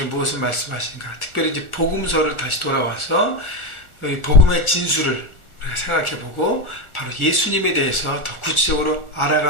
무엇을 말씀하신가? 특별히 이제 복음서를 다시 돌아와서 복음의 진수를 우리가 생각해보고 바로 예수님에 대해서 더 구체적으로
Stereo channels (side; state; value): right; late; 1.4 ms